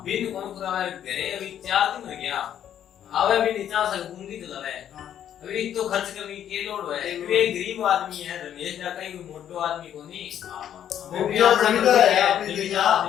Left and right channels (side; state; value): right; quieter; 10.1 dB